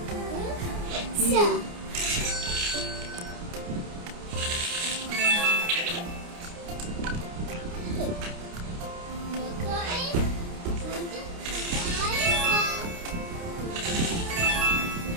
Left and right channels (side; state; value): left; late; 29 ms